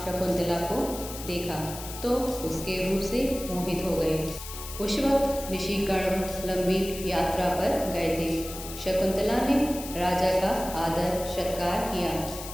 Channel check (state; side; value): noise; left; hiss, 11 dB below the sound